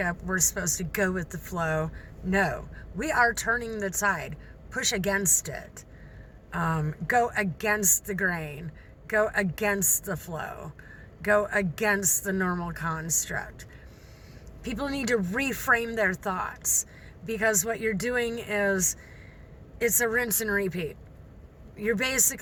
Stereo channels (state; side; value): identical; both; correlation 1.00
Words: We're supposed to go with the flow. No, we are turning the tide. Push against it. Go against the grain. Go against the flow. Go against the normal construct. People need to reframe their thoughts, because what you're doing is, it's a rinse and repeat. You're